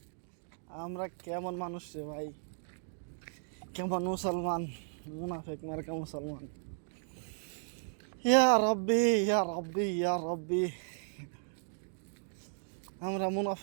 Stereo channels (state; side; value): silent; left; digital silence